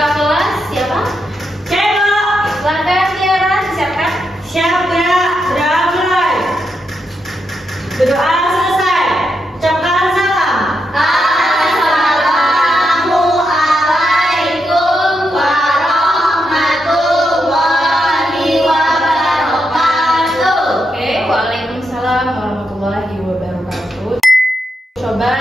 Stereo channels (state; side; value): normal; both; correlation 0.83